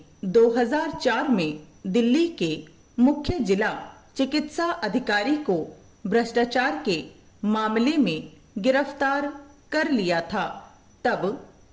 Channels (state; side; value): identical; both; correlation 1.00